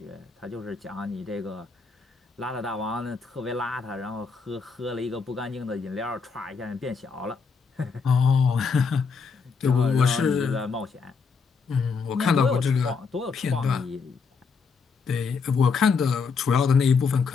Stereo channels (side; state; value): right; quieter; 5.2 dB